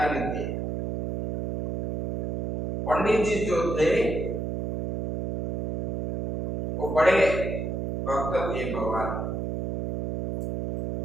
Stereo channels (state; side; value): noise; right; hum, 3 dB below the sound